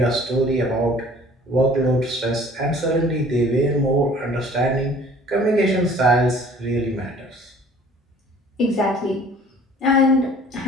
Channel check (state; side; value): normal; both; correlation 0.51